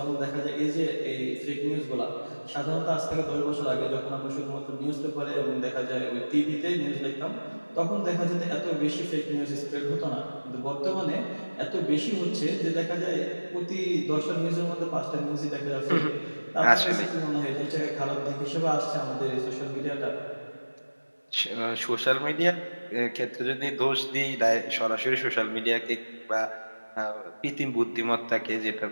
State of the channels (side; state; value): both; inverted; correlation -1.00